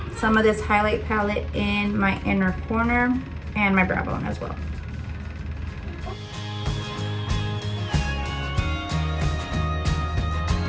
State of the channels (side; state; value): both; identical; correlation 1.00